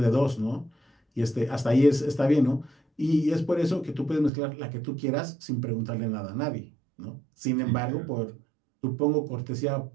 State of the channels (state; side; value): drops out; left; at 4.3 s